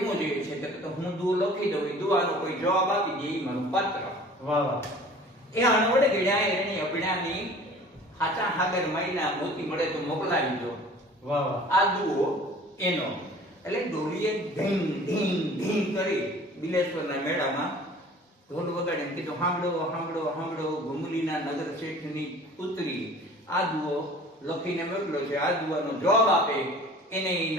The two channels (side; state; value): both; normal; correlation 0.46